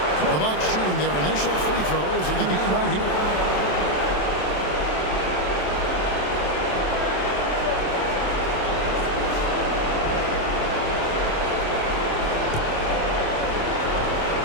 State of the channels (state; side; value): late; right; 27 ms